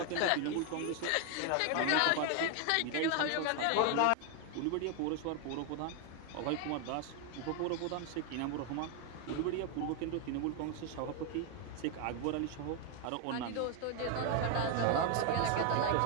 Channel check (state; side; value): different; both; correlation 0.01